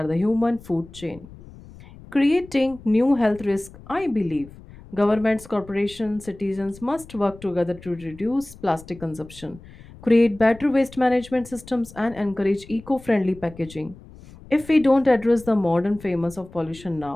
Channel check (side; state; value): left; noise; rumble, 20 dB below the sound